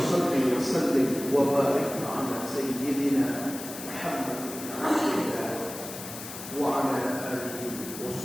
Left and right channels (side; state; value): left; noise; hiss, 11 dB below the sound